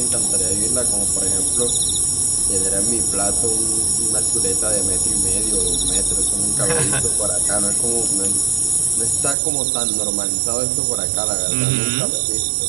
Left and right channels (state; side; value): drops out; left; at 9.3 s